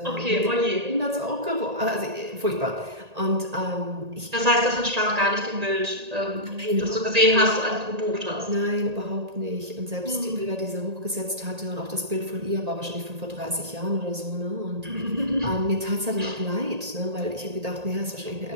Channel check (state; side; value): late; left; 1.8 ms